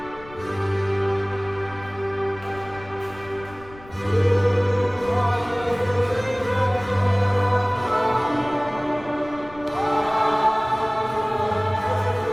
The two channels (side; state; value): left; noise; rumble, 20 dB below the sound